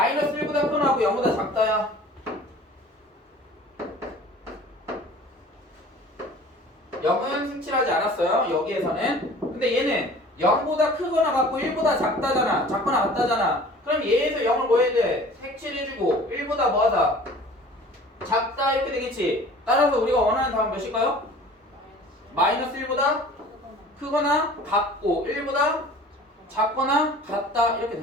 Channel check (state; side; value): normal; both; correlation 0.46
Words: 1보다 크거나 하고 0보다 작다야. 0은 색칠하지 않았어요. 여기에서는. 근데 얘는 0보다 크거나 같고 1보다 작다잖아. 작거나 같다잖아. 그럼 얘에서 0을 뭐 해야 돼? 색칠해주고 1보다 뭐하다? 작다 이렇게 되겠지. 따라서 우리가 원하는 답은 몇일까요? 마이너스 1보다 크거나 같고 1보다 작거나 같다 이렇게